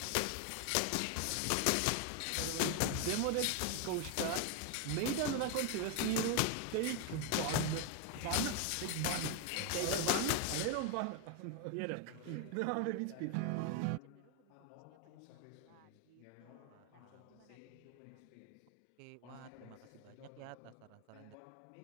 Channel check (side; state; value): both; different; correlation 0.01